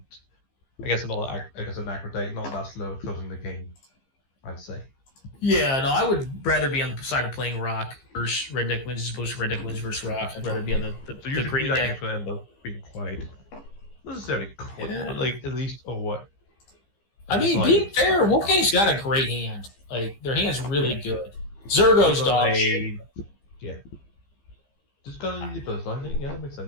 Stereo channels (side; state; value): right; late; 15 ms